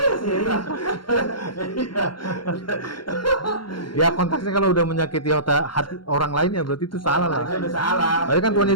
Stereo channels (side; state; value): right; late; 0.72 ms